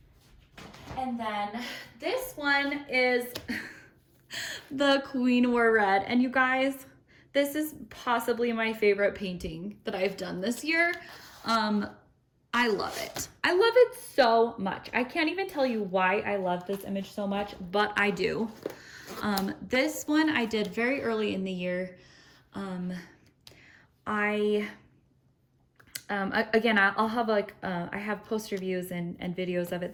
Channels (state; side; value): identical; both; correlation 1.00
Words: And then this one is the Queen Wore Red. And you guys, this is possibly my favorite painting that I've done this year. I love it. I love it so much. I can't even tell you why I love this image so much, but I do. This one I did very early in the year. Again, I'll have like, I have post reviews and videos of it